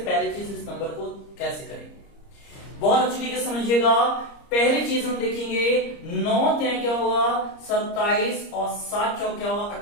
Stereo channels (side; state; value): right; late; 30 ms